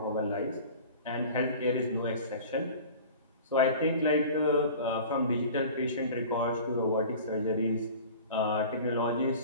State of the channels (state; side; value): inverted; both; correlation -0.41